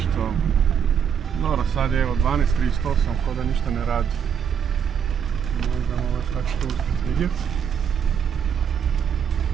Dobro, sad je evo 12.38, ko da ništa ne radi. Možda ovo tako što uspjeti vidjeti.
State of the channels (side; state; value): left; quieter; 7.7 dB